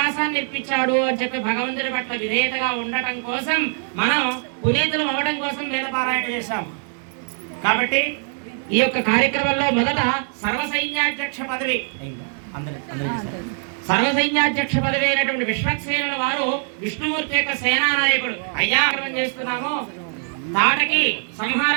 ఇప్పించాడు అని చెప్పి భగవంతుడి పట్ల విధేయతగా ఉండటం కోసం మనం పునీతులు అవ్వడం కోసం వేదపారాయణ చేశాం కాబట్టి ఈ యొక్క కార్యక్రమంలో మొదట సర్వసైన్యాధ్యక్ష పదవి సర్వసైన్యాధ్యక్ష పదవి అయినటువంటి విశ్వక్సేనుల వారు విష్ణుమూర్తి యొక్క సేనా నాయకుడు అయ్యా చేస్తున్నాము తాటకి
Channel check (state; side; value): silent; left; 57 dB below the other